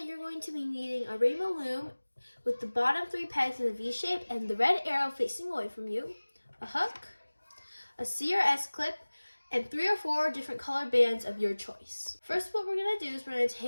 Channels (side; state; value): both; inverted; correlation -1.00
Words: you're going to be needing a rainbow loom with the bottom 3 pegs in a V shape and the red arrow facing away from you, a hook, a C or S clip, and 3 or 4 different color bands of your choice. First, what we're going to do is we're going to